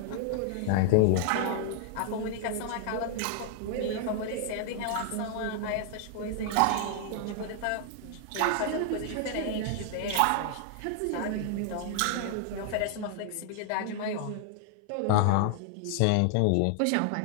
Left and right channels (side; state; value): both; different; correlation 0.00